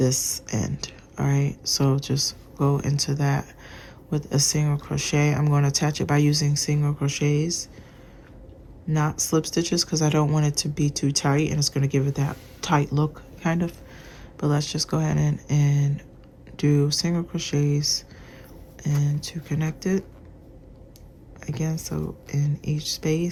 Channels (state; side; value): identical; both; correlation 1.00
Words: end. All right, so just go into that with a single crochet. I'm going to attach it by using single crochets, not slip stitches, because I don't want it to be too tight, and it's going to give it that tight look kind of. But let's just go ahead and do single crochets and to connect it again. So in each